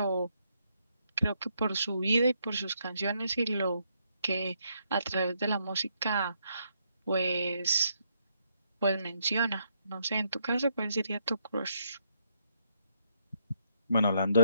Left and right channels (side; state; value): both; inverted; correlation -0.75